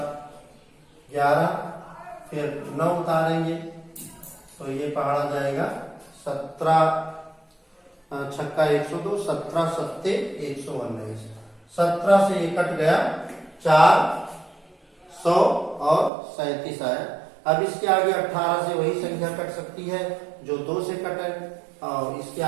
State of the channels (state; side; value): drops out; left; at 16.1 s